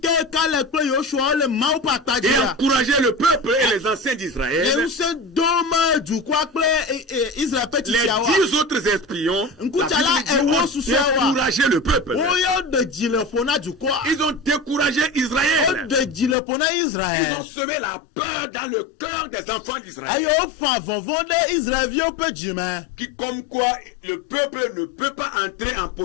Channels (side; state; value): right; drops out; at 16.4 s